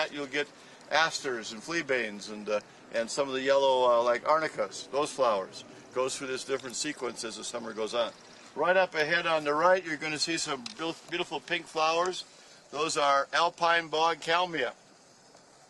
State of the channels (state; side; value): identical; both; correlation 1.00